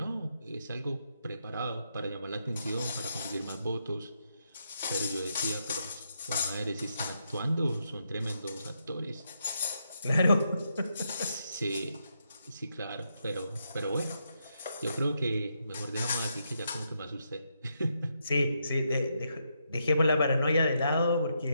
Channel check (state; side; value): inverted; both; correlation -0.80